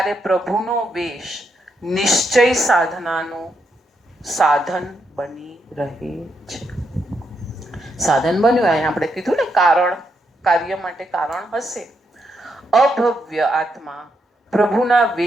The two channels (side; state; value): both; normal; correlation 0.80